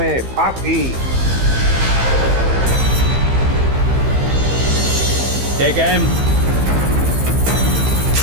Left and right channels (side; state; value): left; late; 15 ms